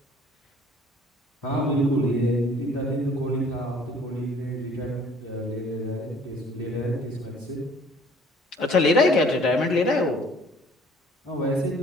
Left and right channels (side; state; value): both; normal; correlation 0.54